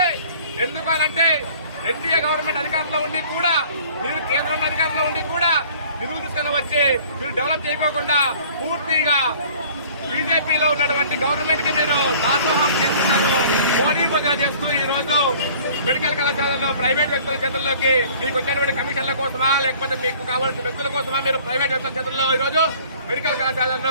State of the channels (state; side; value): inverted; both; correlation -0.50